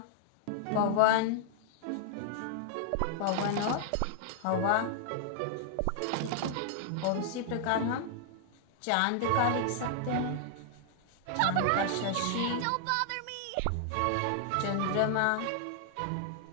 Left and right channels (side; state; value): both; different; correlation -0.01